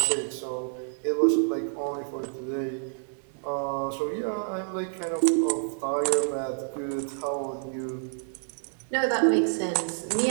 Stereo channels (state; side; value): silent; left; digital silence